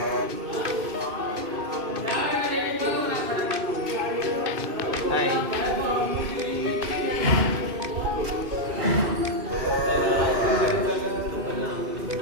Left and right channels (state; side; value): late; left; 2.5 ms